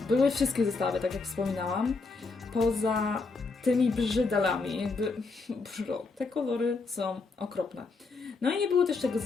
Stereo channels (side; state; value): right; quieter; 4.1 dB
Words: były wszystkie zestawy, tak jak wspominałam, poza tymi brzydalami, jakby te kolory są okropne. No i nie było też tego